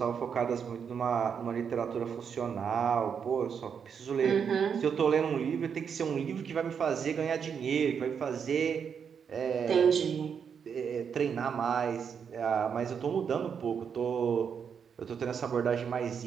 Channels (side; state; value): left; quieter; 7.0 dB